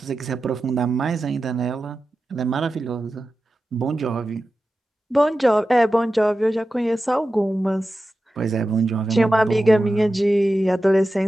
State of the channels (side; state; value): both; normal; correlation 0.93